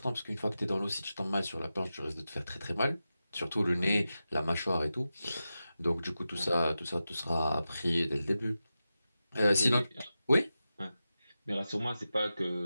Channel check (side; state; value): both; inverted; correlation -0.92